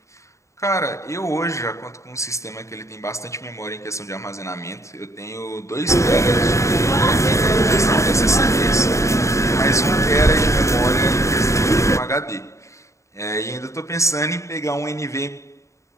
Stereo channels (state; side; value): late; right; 0.14 ms